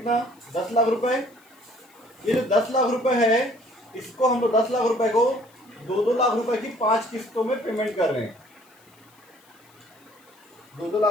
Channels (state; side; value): noise; left; hiss, 30 dB below the sound